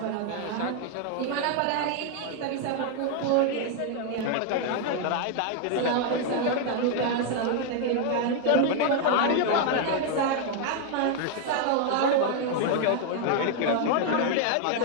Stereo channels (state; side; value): different; both; correlation 0.00